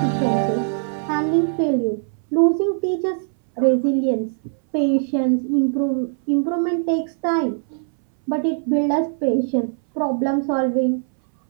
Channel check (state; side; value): silent; left; 61 dB below the other